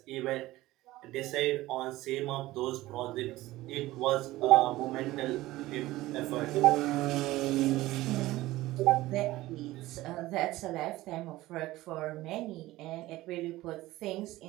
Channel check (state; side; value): quieter; left; 17.5 dB